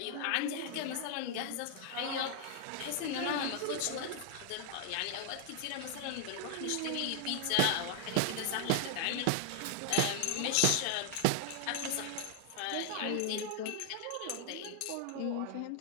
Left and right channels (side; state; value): both; different; correlation 0.00